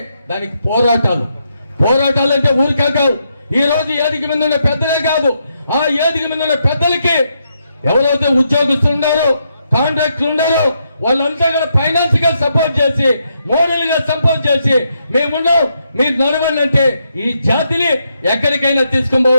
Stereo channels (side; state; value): both; inverted; correlation -0.79